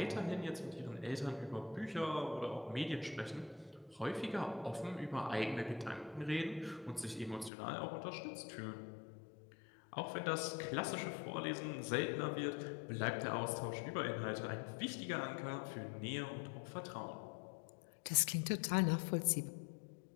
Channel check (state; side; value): drops out; right; at 7.5 s